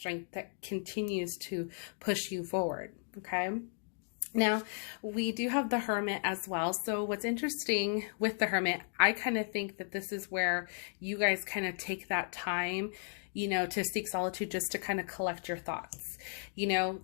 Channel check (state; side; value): silent; right; 54 dB below the other